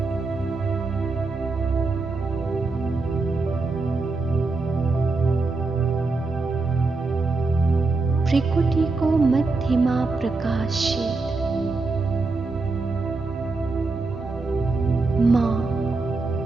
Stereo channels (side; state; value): left; quieter; 3.7 dB